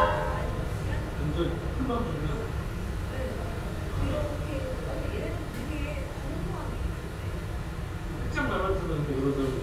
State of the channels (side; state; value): both; identical; correlation 1.00